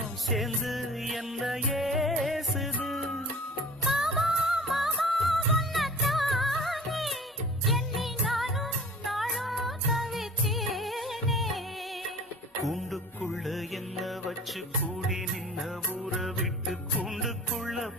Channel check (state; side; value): normal; both; correlation 0.44